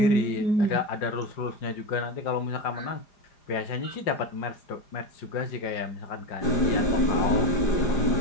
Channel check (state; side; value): late; right; 4.9 ms